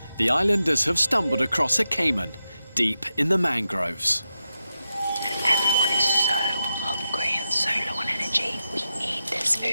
the islanders have stumbled across a caiman deep in the mangroves. Everyone is so hungry and so low on energy. We need this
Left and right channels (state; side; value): inverted; both; correlation -0.88